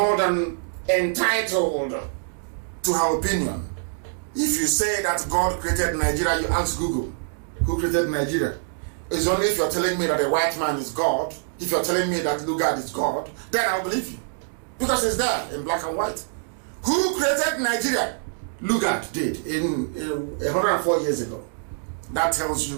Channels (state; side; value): silent; left; digital silence